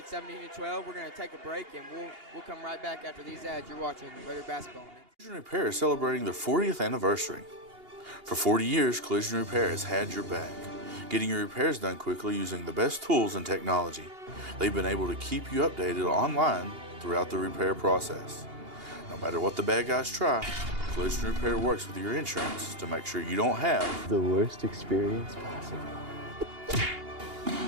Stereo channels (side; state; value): left; late; 2.8 ms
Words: 17-12. We're going to take a break, and we'll come right back after these ads. You're watching Raider Basketball. Collision Repair is celebrating their 40th anniversary. For 40 years, Collision Repair has had your back, getting your repairs done quickly using the best tools and technology. They've been able to keep you updated online throughout the repair process. No matter what the bad guys try, Collision Repair works with your insurance to make sure you don't have the worst experience possible.